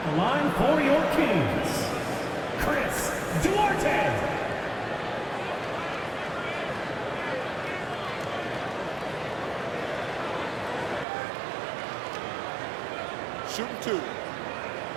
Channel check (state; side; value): drops out; left; at 11.1 s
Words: the line for your Kings, Chris Duarte. Shooting two.